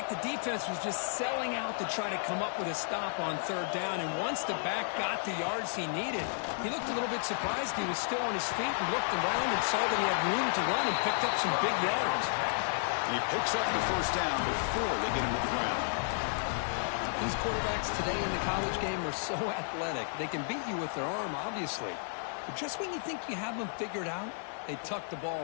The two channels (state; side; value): silent; right; digital silence